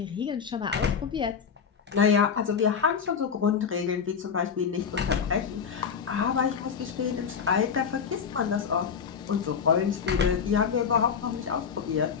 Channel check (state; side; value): quieter; right; 6.7 dB